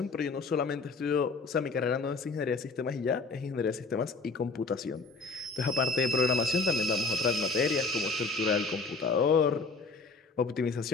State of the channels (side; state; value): right; quieter; 4.0 dB